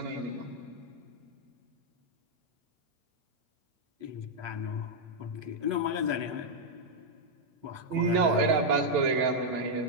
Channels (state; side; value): late; left; 9.0 ms